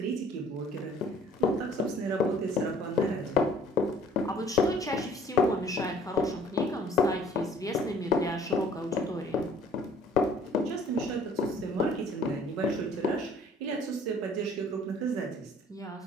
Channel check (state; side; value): normal; both; correlation 0.55